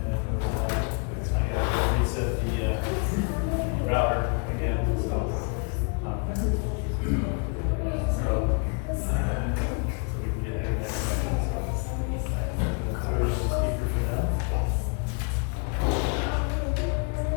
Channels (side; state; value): right; quieter; 37.0 dB